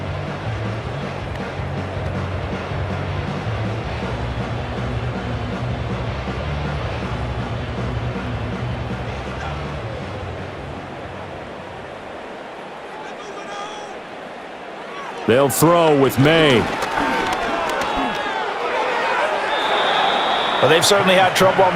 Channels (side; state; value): both; identical; correlation 1.00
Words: They'll throw with May. Well, they've certainly had trouble